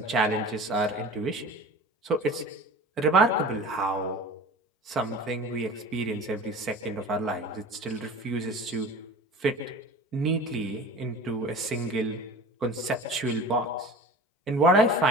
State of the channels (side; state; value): both; normal; correlation 0.38